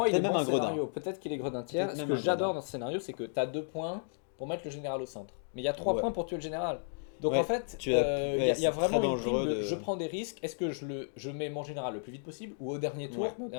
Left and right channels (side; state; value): right; silent; digital silence